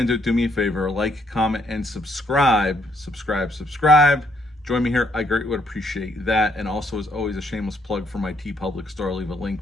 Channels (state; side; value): normal; both; correlation 0.71